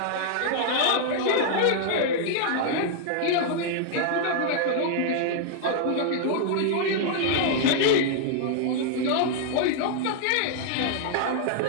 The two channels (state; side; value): different; both; correlation -0.01